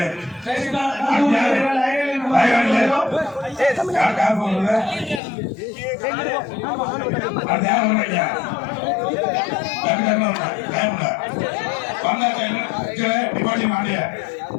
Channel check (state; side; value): drops out; right; at 5.2 s